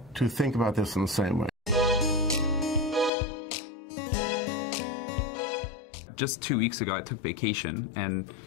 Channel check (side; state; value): right; drops out; at 3.1 s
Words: to think about this in the same way. Just 2 weeks ago, I took vacation, and